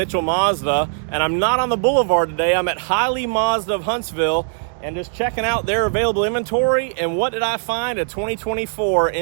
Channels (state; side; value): silent; left; digital silence